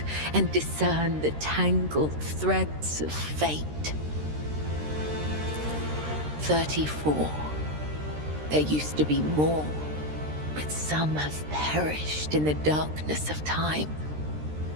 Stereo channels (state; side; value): late; left; 13 ms